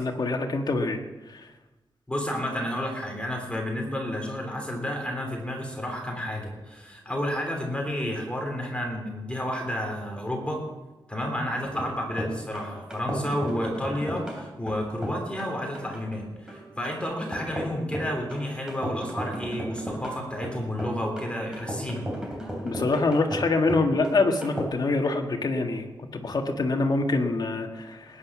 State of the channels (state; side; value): normal; both; correlation 0.77